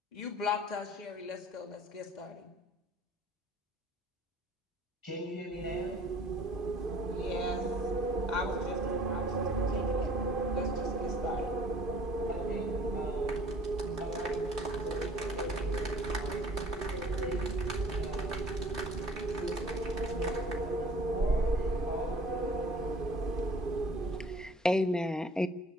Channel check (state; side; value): normal; both; correlation 0.52